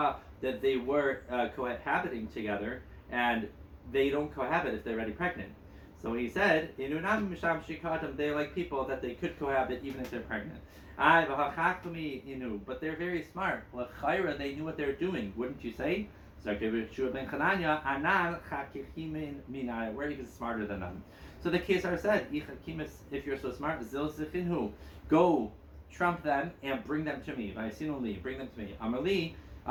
that they were cohabiting together, and they don't cohabit if they're already pregnant. So he said, they're like people that they could cohabit even if they're pregnant. But they're very smart. They knew what they're doing, wouldn't you say? So we're even smarter than them. So the Kesar said, if you're so smart, go trump them and bring them to me. Bring them to me. Amarli.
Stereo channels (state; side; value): identical; both; correlation 1.00